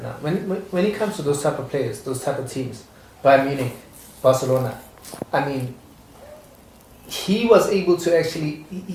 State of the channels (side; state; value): both; identical; correlation 1.00